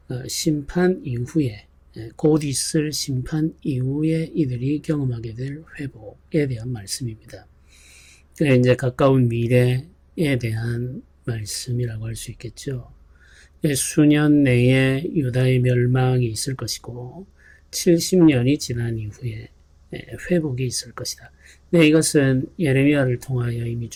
심판 이후에 곧 있을 심판 이후에 이들이 경험하게 될 회복에 대한 말씀입니다. 이제 가까운 미래에 대한 말씀이라고 할 수 있겠죠. 수년 내에 유다의 멸망이 있을 것이고 70년이 지난 이후에 회복이 있을 것이다. 네, 이것은 예레미야를 통하여 이미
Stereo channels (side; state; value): both; identical; correlation 1.00